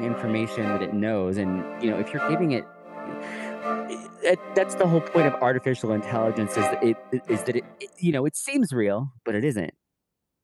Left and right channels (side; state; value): both; identical; correlation 1.00